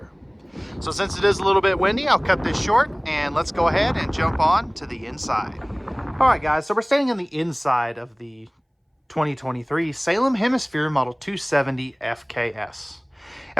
So since it is a little bit windy, I'll cut this short and let's go ahead and jump on to the inside. Alright guys, so we're standing on the inside of the 2023 Salem Hemisphere Model 270 FKS.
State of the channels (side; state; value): both; identical; correlation 1.00